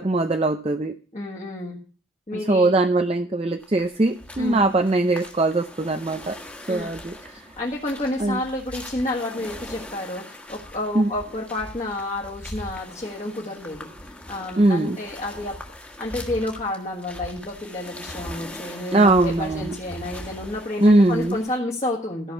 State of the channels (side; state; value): both; normal; correlation 0.61